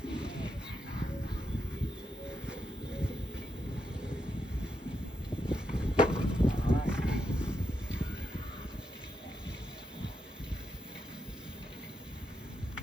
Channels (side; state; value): both; normal; correlation 0.83